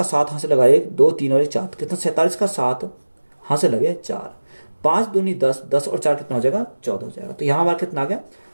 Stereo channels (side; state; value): both; inverted; correlation -1.00